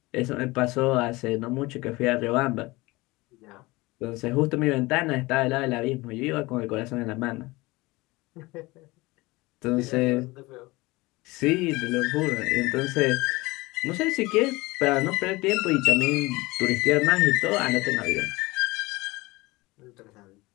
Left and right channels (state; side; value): quieter; right; 21.8 dB